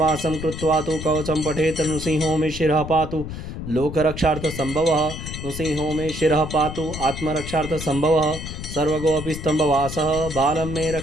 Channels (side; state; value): left; noise; rumble, 8 dB below the sound